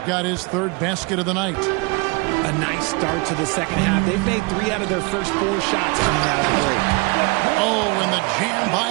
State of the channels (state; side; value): quieter; left; 29.3 dB